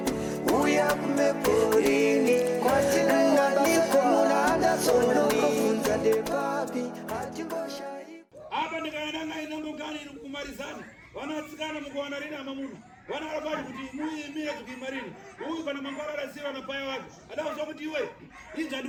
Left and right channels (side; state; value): both; identical; correlation 1.00